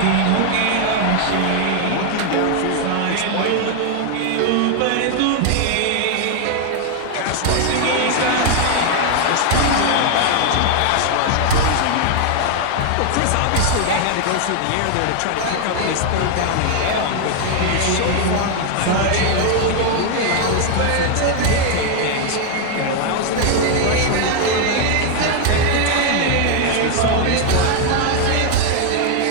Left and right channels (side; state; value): both; different; correlation 0.00